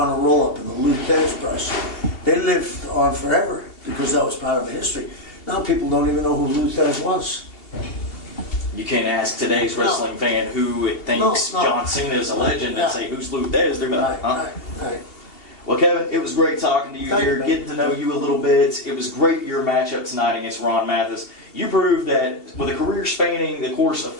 roll-up and the Lou Thesz press, they lived on forever because that was part of history. Now people don't even know who Lou Thesz was. You can't ask today's wrestling fan who thinks John Cena is a legend and say, who's Lou Thesz? They're going to be like, Right. Well, Kevin, it was great talking to you Thank here, you, getting to know you a little bit. It was great, your matchup tonight against Ron Mathis. You proved that with a career spanning the course of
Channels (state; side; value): late; right; 2.8 ms